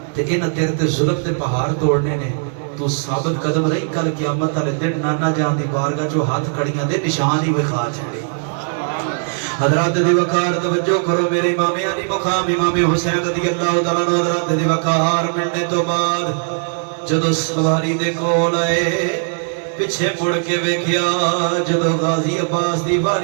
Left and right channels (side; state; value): left; silent; 67 dB below the other